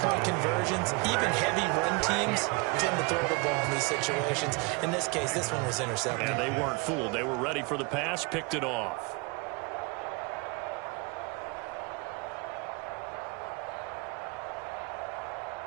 conversions, even heavy run teams tend to throw the ball in these situations. In this case, this one was intercepted. And they weren't fooled. They were ready for the pass, picked it off.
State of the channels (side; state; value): left; quieter; 28.5 dB